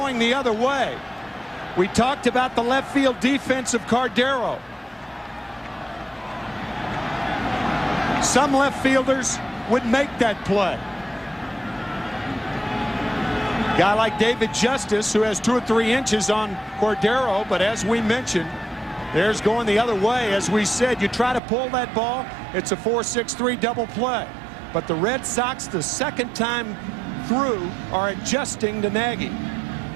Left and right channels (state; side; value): drops out; left; at 21.4 s